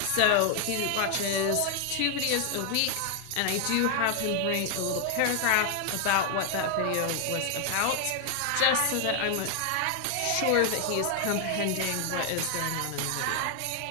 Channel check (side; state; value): both; different; correlation 0.00